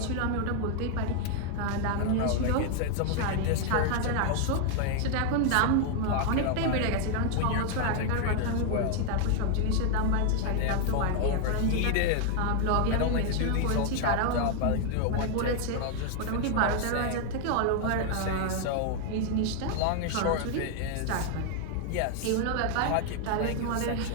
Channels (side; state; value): both; different; correlation 0.00